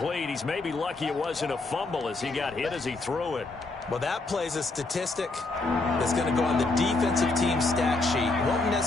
He's maybe lucky it wasn't a fumble as he got hit as he threw it. Well, that plays a statistic that's going to go on the defensive team stat sheet. It won't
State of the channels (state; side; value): quieter; right; 3.4 dB